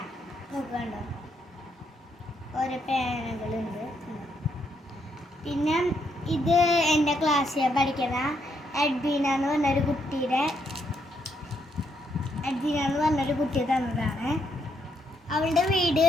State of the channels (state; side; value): normal; both; correlation 0.76